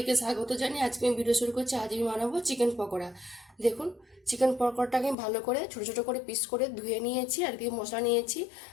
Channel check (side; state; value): right; drops out; at 5.2 s